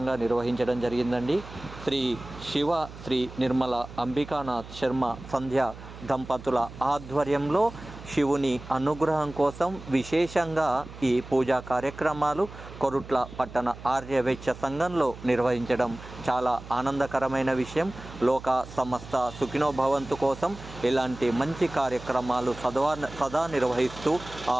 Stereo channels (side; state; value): right; noise; hum, 15 dB below the sound